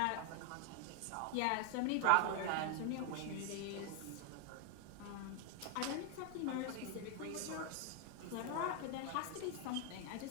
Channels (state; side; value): different; both; correlation 0.00